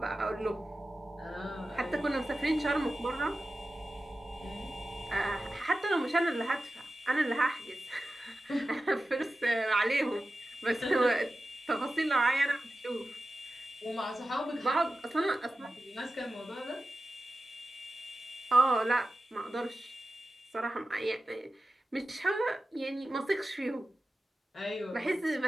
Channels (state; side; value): normal; both; correlation 0.94